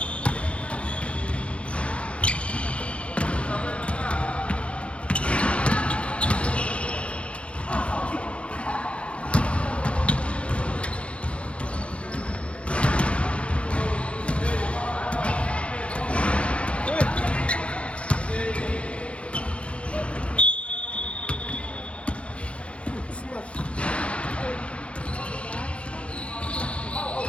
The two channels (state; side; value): late; right; 0.061 ms